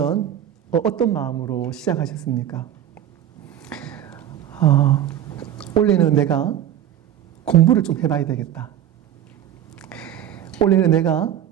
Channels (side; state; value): left; quieter; 10.8 dB